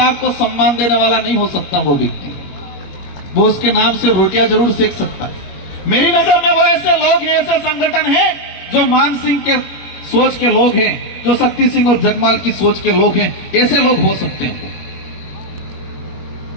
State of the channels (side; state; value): right; late; 21 ms